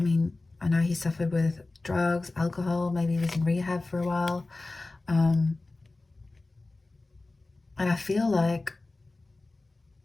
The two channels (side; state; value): right; quieter; 3.2 dB